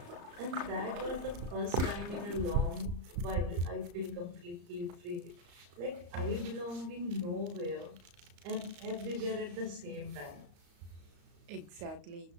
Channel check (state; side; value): late; left; 34 ms